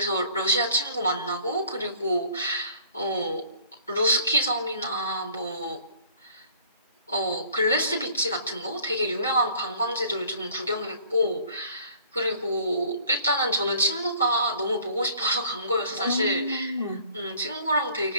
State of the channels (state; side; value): inverted; both; correlation -0.54